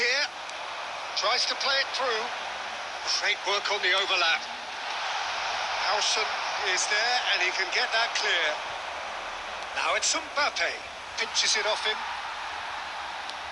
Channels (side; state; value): both; identical; correlation 1.00